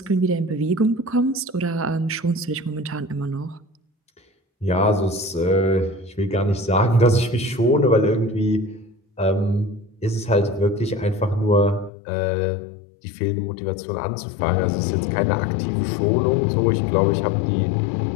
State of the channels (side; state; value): right; drops out; at 11.9 s